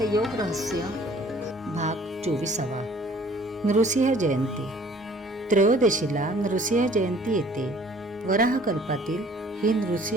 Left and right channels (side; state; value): both; normal; correlation 0.55